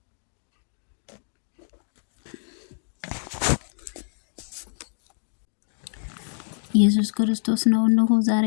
ኢየሱስ ክርስቶስ ነው። እነሆ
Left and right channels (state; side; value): silent; right; digital silence